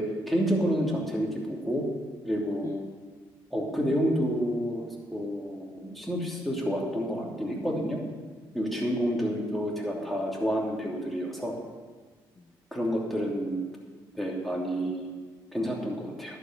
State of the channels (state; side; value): normal; both; correlation 0.78